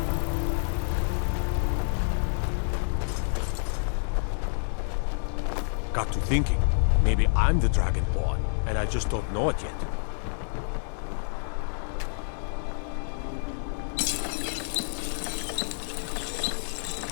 Got to thinking. Maybe I'm the Dragonborn, and I just don't know it yet.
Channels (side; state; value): right; silent; digital silence